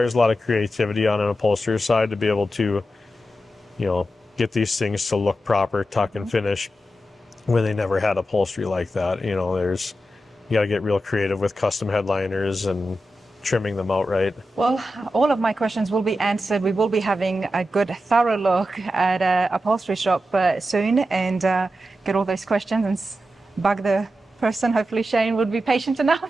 a lot of creativity on an upholsterer's side to be able to, you know, get these things to look proper, tuck and finish, when they never had upholstery like that. You know, you got to get real creative with custom headliners and trimming them out right. Well, all of my questions will be answered. We will be having a good, thorough look at a upholstery shop soon, and get all those questions and bug the person. Hopefully Shane would be patient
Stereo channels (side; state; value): both; normal; correlation 0.90